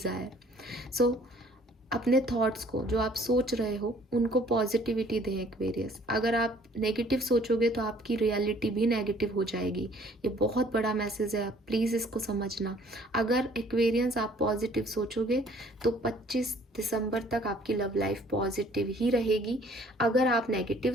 So अपने थॉट्स को, जो आप सोच रहे हो, उनको पॉजिटिविटी दें एक्वेरियस। अगर आप नेगेटिव सोचोगे तो आपकी रियलिटी भी नेगेटिव हो जाएगी। ये बहुत बड़ा मैसेज है, प्लीज़ इसको समझना। अगर एक्वेरियंस आप पॉजिटिव सोचोगे तो 25 दिसंबर तक आपकी लव लाइफ पॉजिटिव ही रहेगी। अगर आप नेगेटिव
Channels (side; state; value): both; normal; correlation 0.57